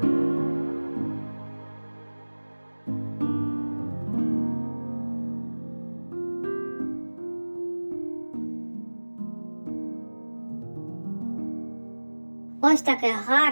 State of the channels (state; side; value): inverted; both; correlation -1.00